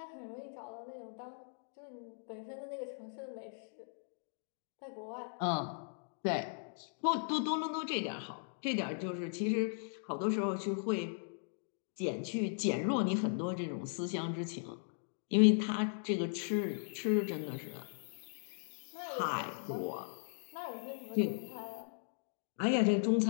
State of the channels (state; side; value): silent; right; digital silence